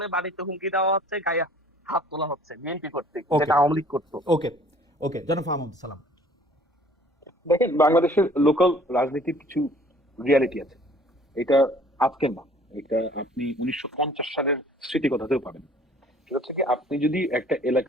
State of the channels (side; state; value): both; normal; correlation 0.54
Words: বাড়িতে হুমকি দেওয়া হচ্ছে, গায়ে হাত তোলা হচ্ছে বিএনপি কর্তৃক, Okay. যেটা আওয়ামী লীগ করতো। ওকে ওকে, জনাব ফাহমুদ সালাম। দেখেন, বাংলাদেশের লোকাল রাজনীতির কিছু রিয়ালিটি আছে। এটা আজকের না, এটা আপনি 1950 সালের স্মৃতি কথাতেও পাবেন। সেটা হচ্ছে কি, আপনি যদি একটা